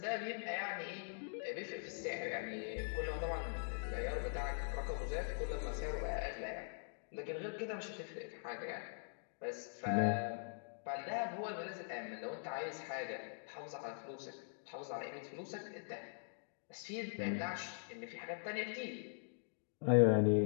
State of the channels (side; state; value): right; silent; digital silence